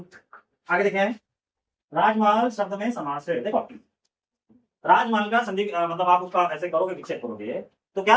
आगे देखें। राजमहल शब्द में समास है। देखो, राजमहल का संधि मतलब आप उसका ऐसे करोगे, विच्छेद करोगे तो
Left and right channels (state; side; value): identical; both; correlation 1.00